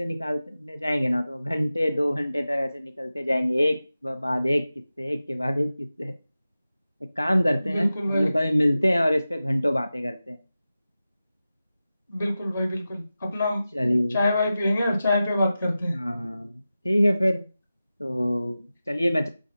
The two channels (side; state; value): both; inverted; correlation -0.94